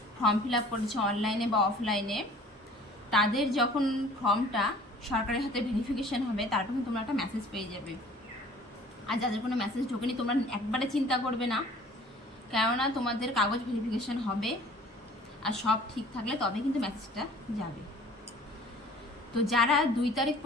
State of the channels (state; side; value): normal; both; correlation 0.50